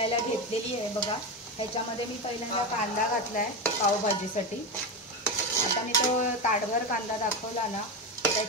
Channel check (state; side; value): normal; both; correlation 0.16